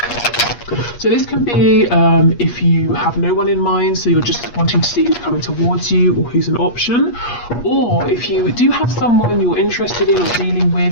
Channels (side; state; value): right; late; 8.4 ms